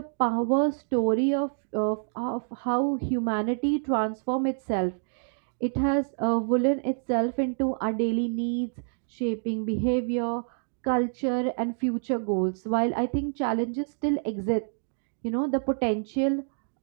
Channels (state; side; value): silent; left; digital silence